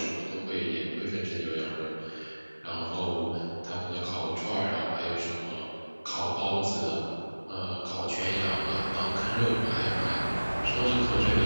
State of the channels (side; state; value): both; inverted; correlation -1.00